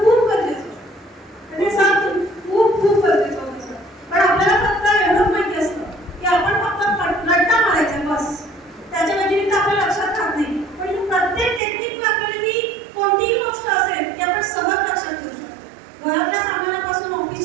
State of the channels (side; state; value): left; drops out; at 11.6 s